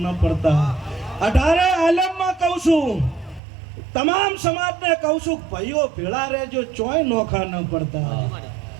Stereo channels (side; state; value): left; drops out; at 3.4 s